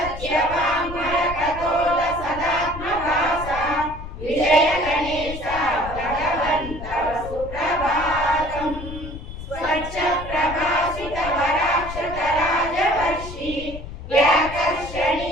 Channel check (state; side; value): noise; left; rumble, 11 dB below the sound